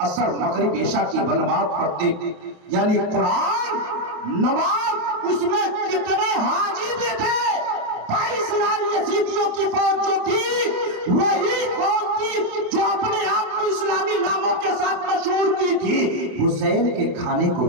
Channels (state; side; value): late; left; 28 ms